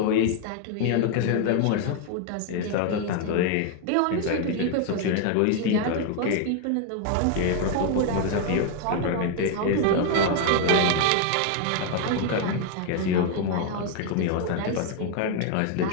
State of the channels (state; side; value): different; both; correlation 0.00